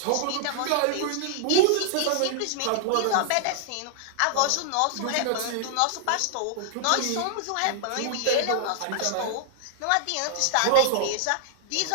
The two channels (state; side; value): different; both; correlation 0.00